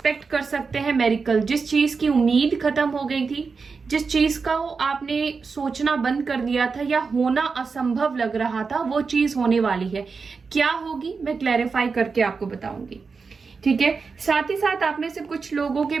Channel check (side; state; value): left; quieter; 4.9 dB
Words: कर सकते हैं मेरिकल, जिस चीज की उम्मीद खत्म हो गई थी, जिस चीज का आपने सोचना बंद कर दिया था या होना असंभव लग रहा था, वो चीज होने वाली है। क्या होगी मैं क्लैरिफाई करके आपको बताऊंगी, ठीक है। साथ ही साथ आप में से कुछ लोगों के